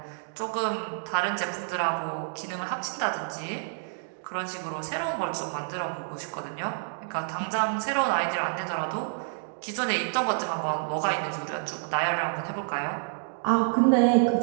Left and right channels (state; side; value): silent; left; digital silence